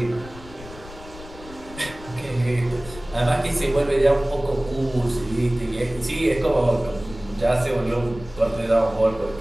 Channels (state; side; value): noise; left; rumble, 17 dB below the sound